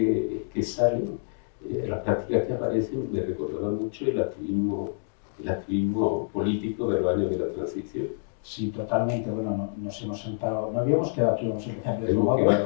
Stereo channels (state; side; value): silent; right; digital silence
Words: salen, las prácticas que aparecen, me recordaban mucho el activismo político de los años de la transición. Sí, totalmente. Bueno, nos hemos sentado, no habíamos quedado aquí, vamos a empezar de nuevo.